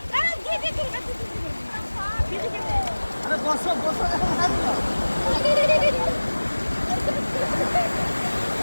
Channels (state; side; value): inverted; both; correlation -1.00